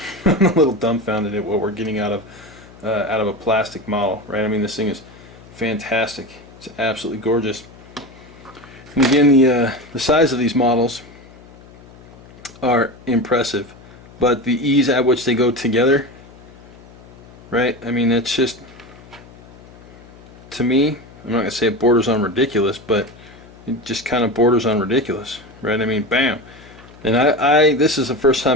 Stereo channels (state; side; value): noise; left; hum, 21 dB below the sound